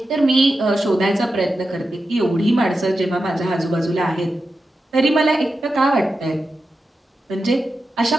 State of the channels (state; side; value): normal; both; correlation 0.91